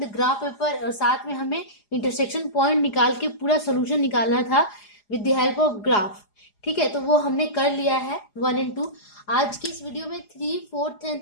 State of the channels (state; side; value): late; right; 4.8 ms